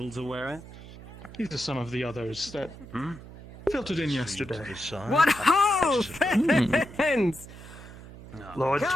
to wear it? These are some of the others that filtered in yesterday. What ho, friends! Lord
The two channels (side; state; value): right; noise; hum, 16 dB below the sound